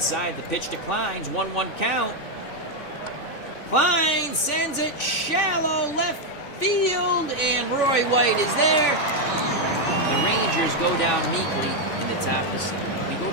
The pitch to Kleins. 1-1 count. Klein sends it shallow left field, and Roy White is there. The Rangers go down meekly in the top of the 7th. We go to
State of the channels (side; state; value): right; late; 3.5 ms